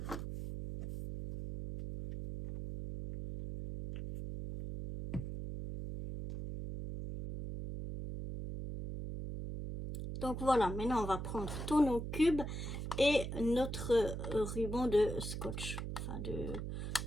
Donc voilà, maintenant on va prendre tous nos cubes et notre ruban de scotch, enfin de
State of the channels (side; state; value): right; noise; hum, 5 dB below the sound